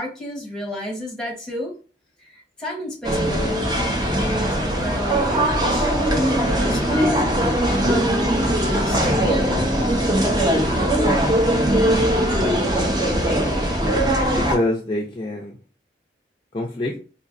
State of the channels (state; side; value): normal; both; correlation 0.56